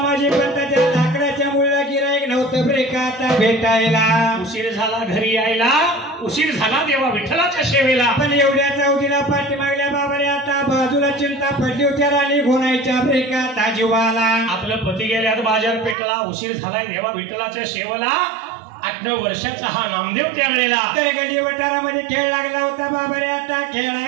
पंताच्या लाकडाच्या मुळीला गिराईक नव्हतं रे का आता भेटायला उशीर झाला घरी यायला उशीर झाला देवा विठ्ठलाच्या सेवेला पण एवढ्या चौथीला पाठी मागल्या बाबा रे आता बाजूला चिंता पडली होत्या राणी घोणायच्या ब्रेका ताजीवाला आपलं पती गेल्यात बाजार पेटला उशीर झालाय देवा विठ्ठलाच्या सेवेला 8-9 वर्षाचा हा नामदेव त्यावेळेला तर गली वटारामध्ये खेळ लागला होता बाबा रे आता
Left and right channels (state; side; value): drops out; left; at 16.0 s